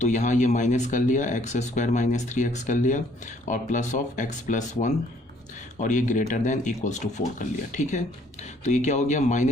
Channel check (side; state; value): both; normal; correlation 0.62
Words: तो यहाँ ये माइनस कर लिया, x² माइनस 3x कर लिया और प्लस ऑफ x प्लस 1 और ये ग्रेटर देन इक्वल्स टू 4 कर लिया। ठीक है, तो ये क्या हो गया,